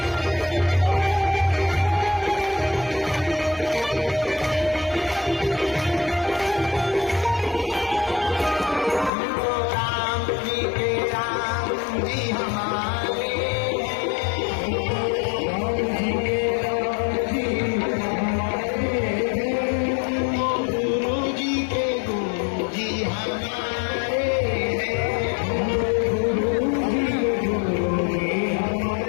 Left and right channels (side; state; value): right; drops out; at 9.1 s